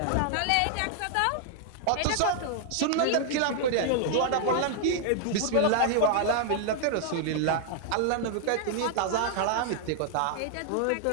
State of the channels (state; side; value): different; both; correlation 0.00